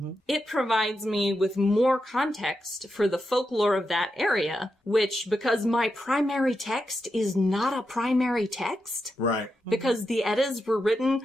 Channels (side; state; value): both; normal; correlation 0.87